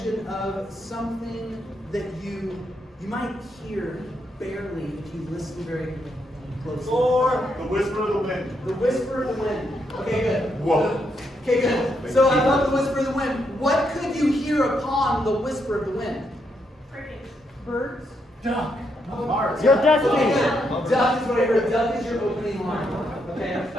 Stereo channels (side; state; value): both; normal; correlation 0.79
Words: of something that you might hear barely if you listen very closely? Or the whisper of the wind. The whisper of the wind. Okay, good. Whoa. Okay, good. So I love the whisper of the wind. What could you hear upon the whisper of the wind? Crickets. Birds. Duck. Mars. Your Okay, destiny. good. Duck is what I heard. Duck is your opening line. Okay,